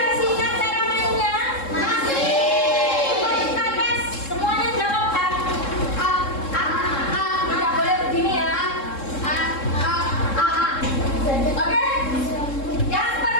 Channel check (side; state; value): right; late; 3.7 ms